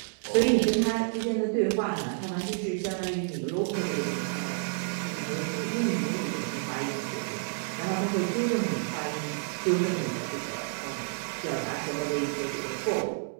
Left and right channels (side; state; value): left; silent; digital silence